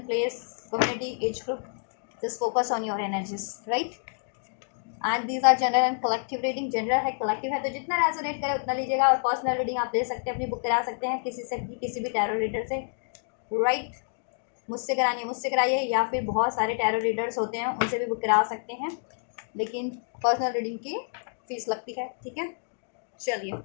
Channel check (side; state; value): right; silent; 59 dB below the other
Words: place, community, age group, just focus on your energies. Right, and these are general and collective reading. General है, collective है, तो जितना रेजोनेट करे उतना लीजिएगा। और पर्सनल रीडिंग आप ले सकते हैं, अपनी बुक करा सकते हैं किसी से भी, किसी भी टैरो रीडर से। राइट, मुझसे करानी है मुझसे कराइए, या फिर बहुत सारे टैरो रीडर्स होते हैं उनसे भी बुक करा सकते हैं, लेकिन पर्सनल रीडिंग की फीस लगती है। ठीक है,